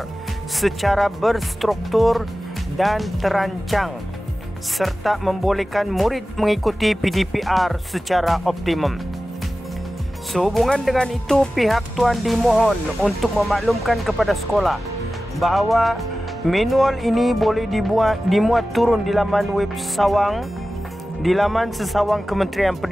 secara berstruktur dan terancang serta membolehkan murid mengikuti PDPR secara optimum. Sehubungan dengan itu, pihak tuan dimohon untuk memaklumkan kepada sekolah bahawa manual ini boleh dimuat turun di laman web sesawang Kementerian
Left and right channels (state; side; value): normal; both; correlation 0.95